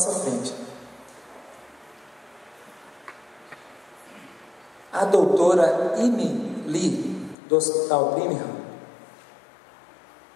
frente. A doutora Amy Lee, do Hospital Brigham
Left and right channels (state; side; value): drops out; right; at 7.4 s